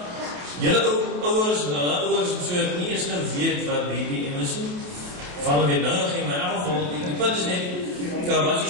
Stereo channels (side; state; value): left; late; 28 ms